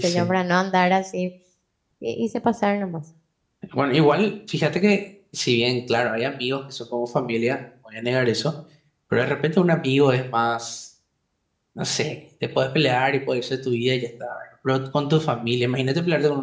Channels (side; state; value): both; identical; correlation 1.00